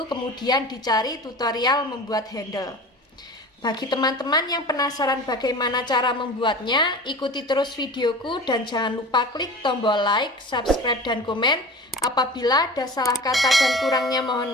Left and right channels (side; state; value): both; normal; correlation 0.36